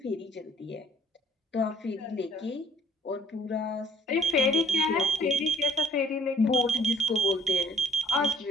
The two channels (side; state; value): both; normal; correlation 0.59